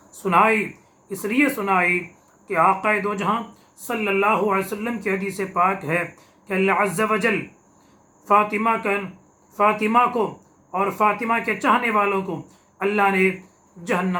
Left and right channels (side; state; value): both; identical; correlation 1.00